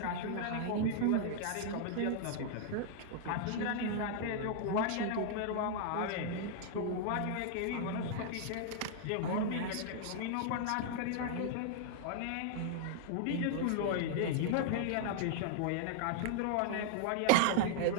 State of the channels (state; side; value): different; both; correlation -0.01